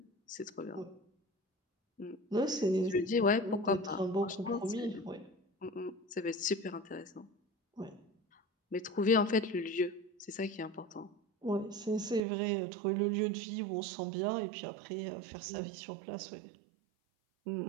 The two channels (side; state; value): left; drops out; at 12.2 s